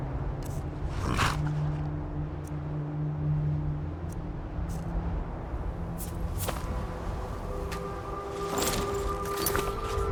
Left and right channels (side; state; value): both; identical; correlation 1.00